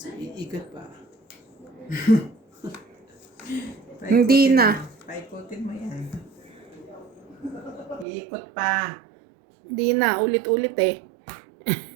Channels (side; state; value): left; drops out; at 8.1 s